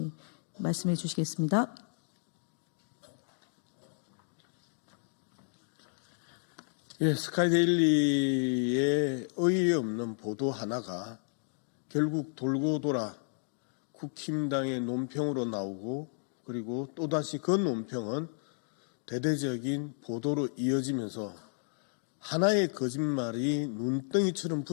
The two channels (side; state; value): right; silent; digital silence